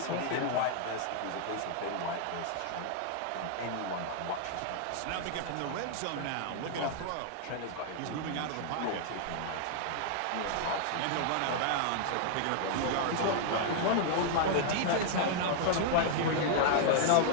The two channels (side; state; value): both; different; correlation -0.01